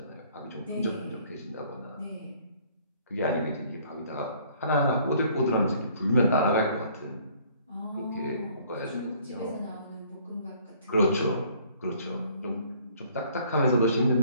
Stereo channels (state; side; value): inverted; both; correlation -0.59